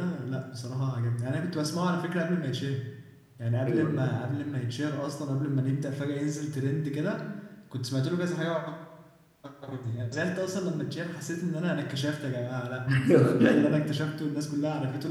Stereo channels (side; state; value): both; identical; correlation 1.00